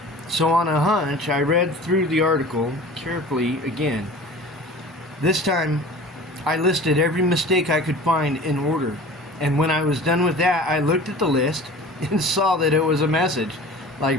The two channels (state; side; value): normal; both; correlation 0.40